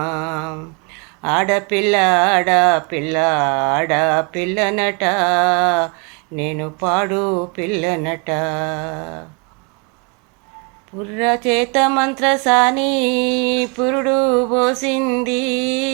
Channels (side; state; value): left; quieter; 33.5 dB